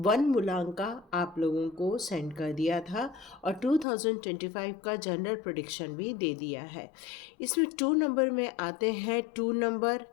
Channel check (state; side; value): drops out; right; at 3.9 s